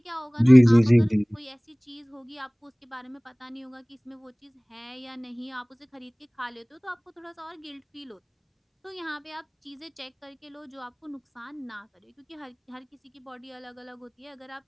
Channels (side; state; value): both; identical; correlation 1.00